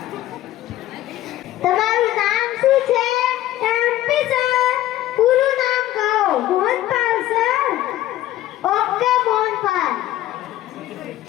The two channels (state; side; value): quieter; right; 14.3 dB